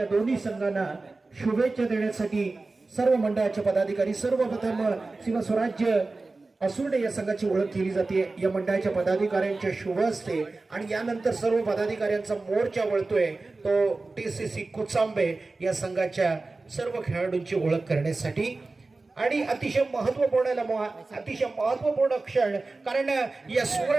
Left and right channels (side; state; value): left; quieter; 3.5 dB